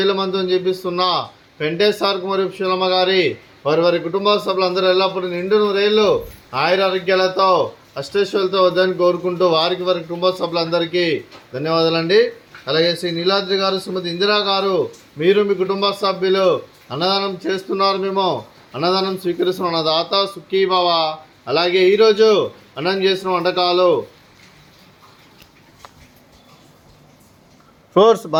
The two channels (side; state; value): both; identical; correlation 1.00